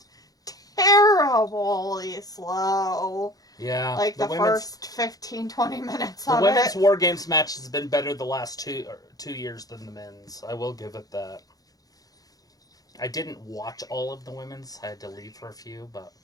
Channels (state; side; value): late; right; 0.18 ms